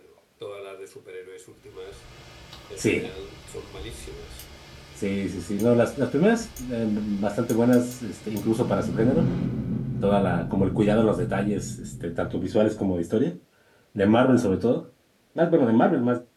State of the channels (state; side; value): identical; both; correlation 1.00